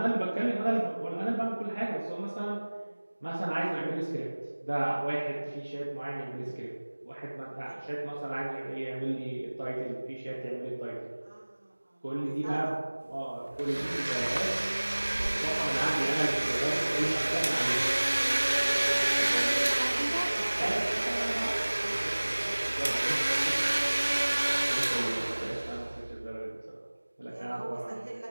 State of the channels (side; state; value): both; inverted; correlation -1.00